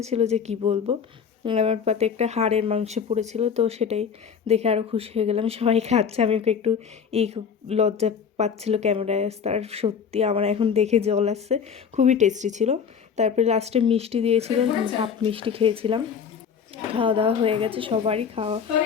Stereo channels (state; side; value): quieter; right; 6.9 dB